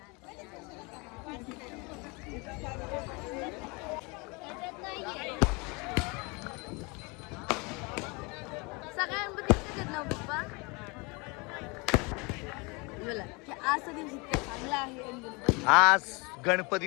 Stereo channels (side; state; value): right; quieter; 28.4 dB